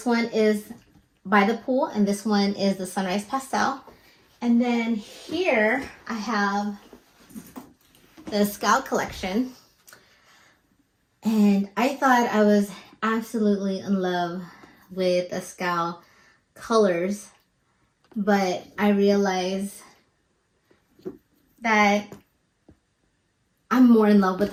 one is By the Pool, and this one is the Sunrise Pastel. And then here I have the Escale collection, and I thought I was absolutely in love with Escale colors, but I realized that I'm more in love with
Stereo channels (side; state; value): both; identical; correlation 1.00